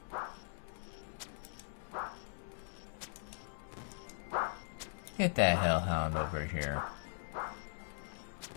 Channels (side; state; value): right; silent; 51 dB below the other